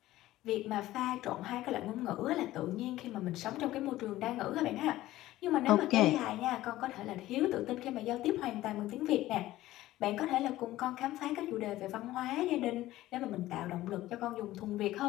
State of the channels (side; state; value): right; quieter; 15.7 dB